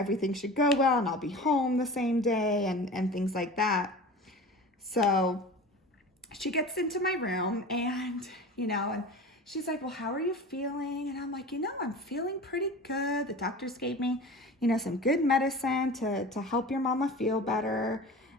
should go well and I'll be home the same day and things like that. So she gets into my room and, and she's like, well, how are you feeling? And I'm like, I'm feeling pretty good. The doctors gave me, some good medicine to help your mama feel better.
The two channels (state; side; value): normal; both; correlation 0.35